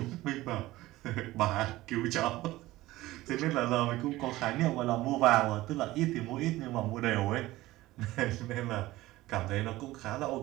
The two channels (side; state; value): left; quieter; 17.5 dB